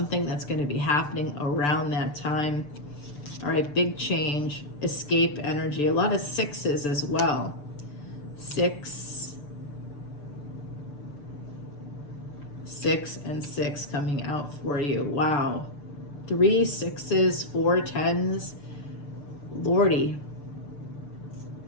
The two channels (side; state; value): right; late; 6.8 ms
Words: that's going to be happening around that time. All right, big change, escape energy. A lot of 6s as well. 6 and 6 coming out for you. Wow. 3 6s, 4 10s. Lordy.